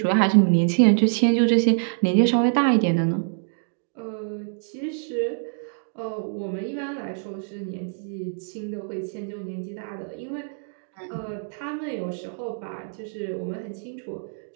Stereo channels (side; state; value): left; silent; digital silence